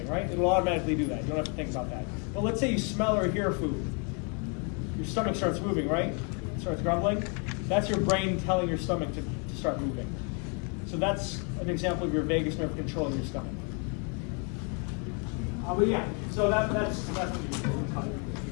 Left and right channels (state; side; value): quieter; right; 36.8 dB